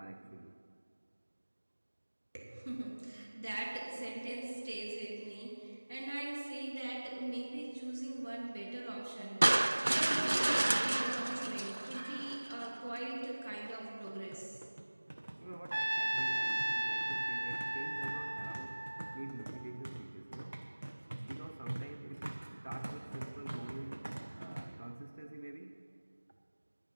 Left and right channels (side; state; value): both; inverted; correlation -1.00